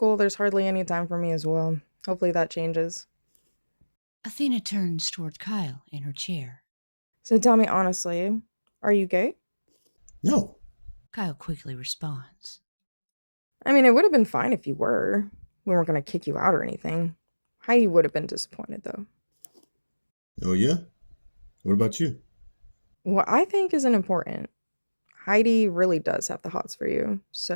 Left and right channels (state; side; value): inverted; both; correlation -1.00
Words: there's hardly any time for me as well. Hopefully that changes. Athena turns toward Kyle in her chair. So tell me honestly, are you gay? No. Kyle quickly responds. I mean, it would have been fine if you were. We weren't going to kick you out or anything. Heidi would have been disappointed, though. Oh, yeah? What about you? What I think isn't important. Heidi really does have the hots for you,